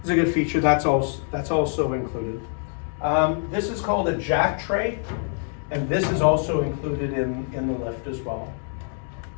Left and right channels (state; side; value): silent; right; 56 dB below the other